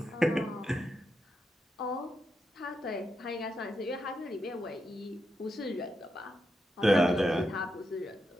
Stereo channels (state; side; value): normal; both; correlation 0.85